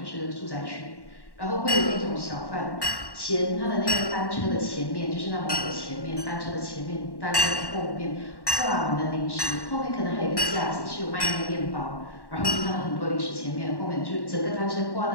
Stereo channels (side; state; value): right; late; 1.1 ms